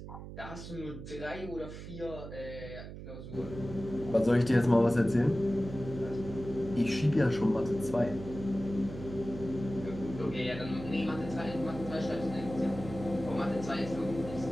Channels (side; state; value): right; noise; hum, 11 dB below the sound